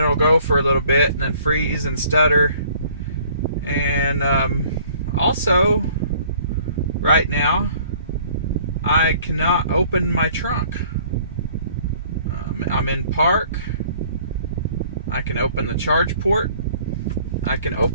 go for a little bit and then freeze and stutter. And also, right now, I cannot open my trunk. I'm in park. I can open the charge port. I can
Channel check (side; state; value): both; inverted; correlation -0.55